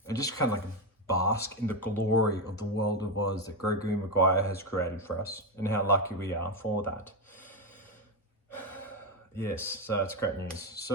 just kind of like bask in the glory of the world of Oz that Gregory Maguire has created for us, and how lucky we are for that. Yes, so it's great news.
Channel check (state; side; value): normal; both; correlation 0.09